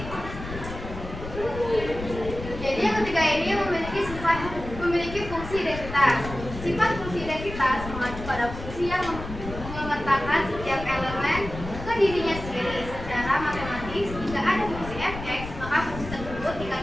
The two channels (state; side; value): noise; left; rumble, 10 dB below the sound